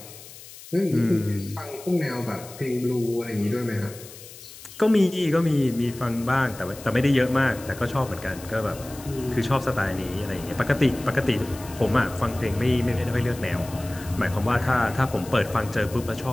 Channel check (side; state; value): left; noise; hiss, 17 dB below the sound